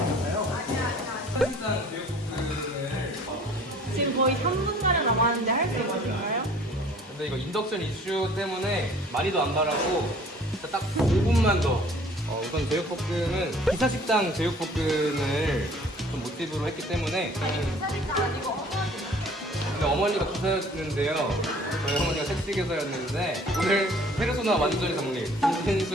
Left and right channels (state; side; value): normal; both; correlation 0.52